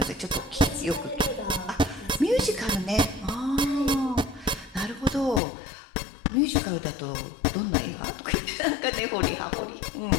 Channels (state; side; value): drops out; right; at 5.4 s